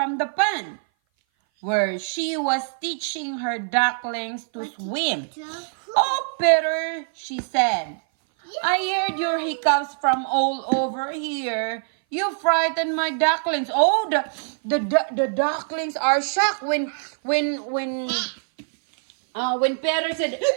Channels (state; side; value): silent; left; 58 dB below the other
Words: the pond, where she was teaching her ducklings to swim. Oh, Peter, she said, I heard your hiccups from all over here. You frightened my ducklings. Oh, the ducklings are shocked when Peter said